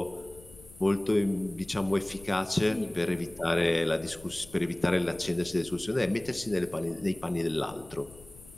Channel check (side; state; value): left; noise; rumble, 21 dB below the sound